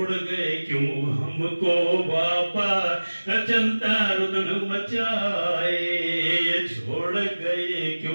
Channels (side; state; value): both; inverted; correlation -1.00